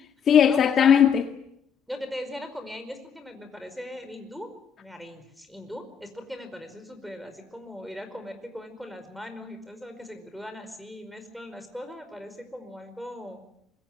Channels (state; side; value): quieter; right; 7.4 dB